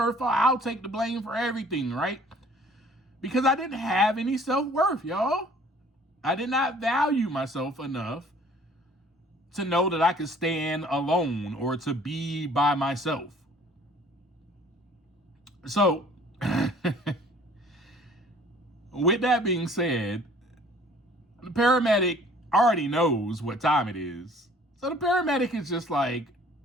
fault. I'll take the blame for everything, right? Because I didn't have any self-worth, y'all. I did not value myself enough to know that I could stand alone or to be by myself. So, with that being said, the paramedic already knows what time it is. So the paramedic is just like,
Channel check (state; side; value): normal; both; correlation 0.54